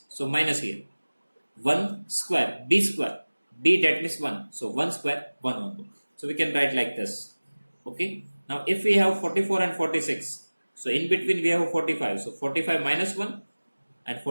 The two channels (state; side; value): inverted; both; correlation -1.00